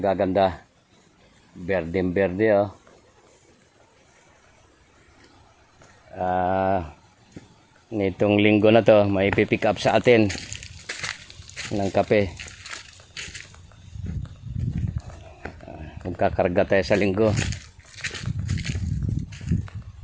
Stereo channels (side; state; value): both; identical; correlation 1.00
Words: Berdeng berde, oh. Nitong linggo na to, may pipick up sa atin ng kape. Magkakarga tayo sa linggo.